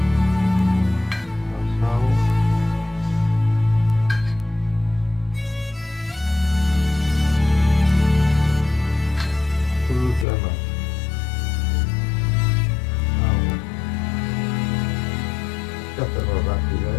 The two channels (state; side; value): drops out; right; at 10.2 s